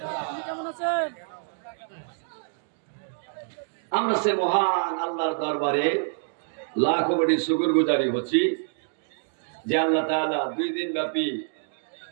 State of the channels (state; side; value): silent; left; digital silence